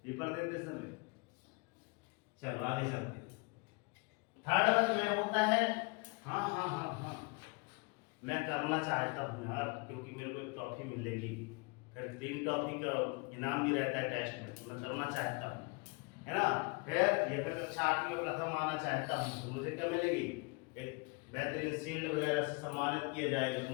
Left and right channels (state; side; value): quieter; right; 29.3 dB